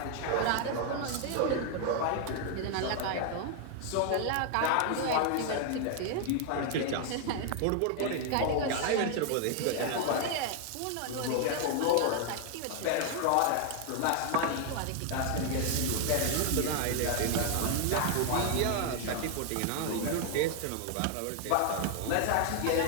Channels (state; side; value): different; both; correlation 0.00